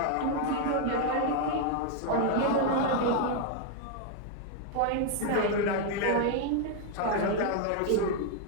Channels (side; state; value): both; different; correlation 0.00